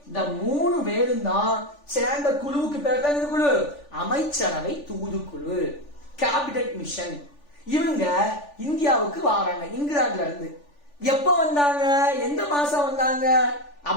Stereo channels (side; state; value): right; late; 3.4 ms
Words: இந்த 3 பேரும் தான் சேர்ந்த குழுவுக்கு பேர் தான் இந்த குழு அமைச்சரவை தூதுக்குழு, கேபினெட் மிஷன். இவங்க இந்தியாவுக்கு வராங்க இங்கிலாந்துல இருந்து. எப்ப வந்தாங்க? எந்த மாசம் வந்தாங்க